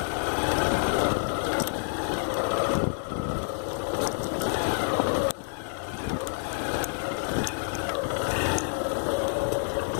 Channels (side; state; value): right; silent; digital silence